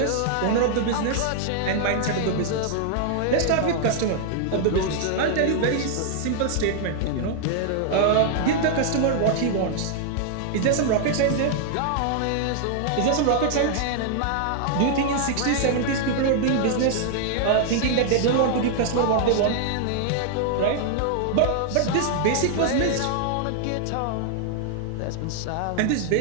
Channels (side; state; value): both; different; correlation 0.00